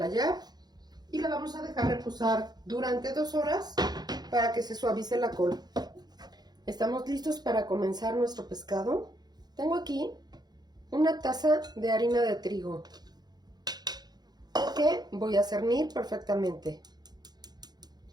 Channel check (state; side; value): late; left; 0.20 ms